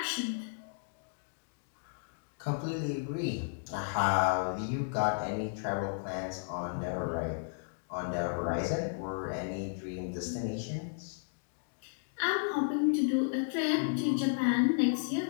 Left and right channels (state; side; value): silent; right; digital silence